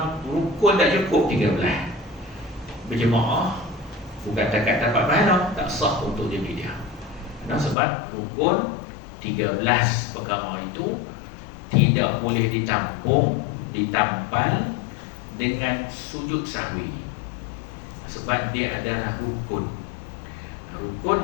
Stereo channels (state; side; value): drops out; right; at 7.8 s